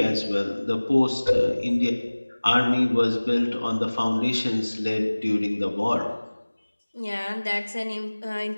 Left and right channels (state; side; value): inverted; both; correlation -1.00